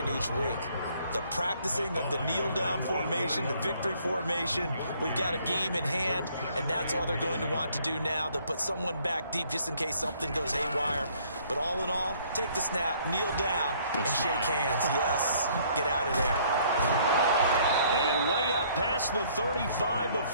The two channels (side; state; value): both; inverted; correlation -0.62